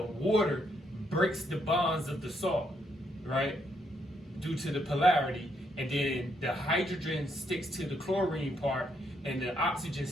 water breaks the bonds of the salt, right? Due to the polarity. And then the hydrogen sticks to the chlorine part and the oxygen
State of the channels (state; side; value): normal; both; correlation 0.75